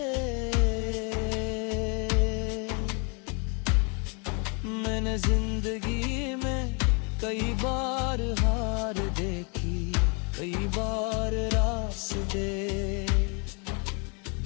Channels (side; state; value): right; quieter; 34.2 dB